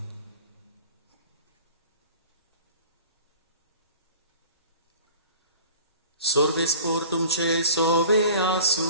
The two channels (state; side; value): inverted; both; correlation -0.43